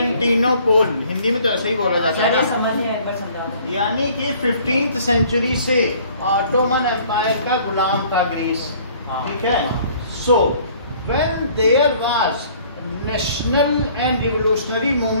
Hindi में तो ऐसे ही बोला जाता सर ये है, समझ नहीं आया, एक बार समझा दो। यानी कि 15th सेंचुरी से ऑटोमन एम्पायर का गुलाम था ग्रीस। ठीक है। So when there was national and revolutionary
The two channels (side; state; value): both; inverted; correlation -0.56